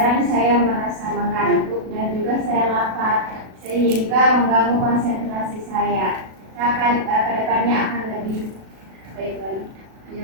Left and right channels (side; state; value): left; late; 37 ms